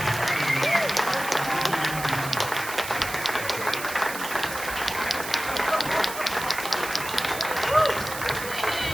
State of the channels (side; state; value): right; noise; hiss, 9 dB below the sound